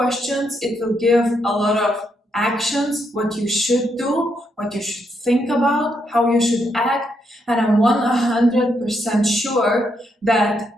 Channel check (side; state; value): both; normal; correlation 0.78